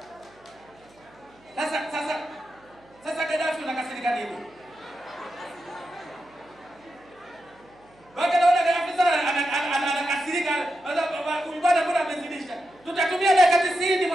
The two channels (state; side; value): noise; right; hum, 29 dB below the sound